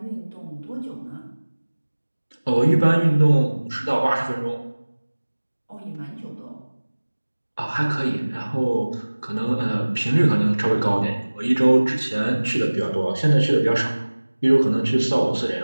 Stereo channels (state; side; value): inverted; both; correlation -1.00